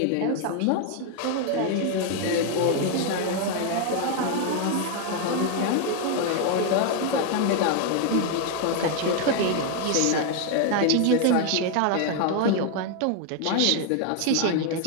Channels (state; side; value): different; both; correlation 0.00